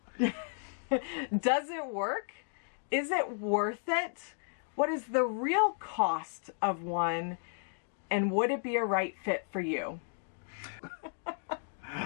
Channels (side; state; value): right; silent; digital silence